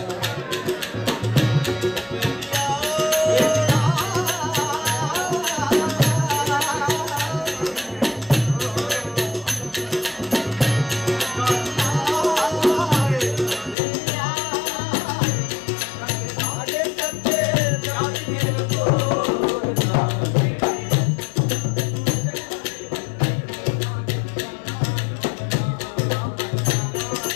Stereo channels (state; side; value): drops out; right; at 13.8 s